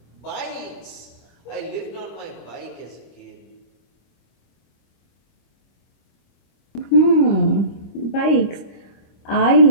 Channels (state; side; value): late; right; 25 ms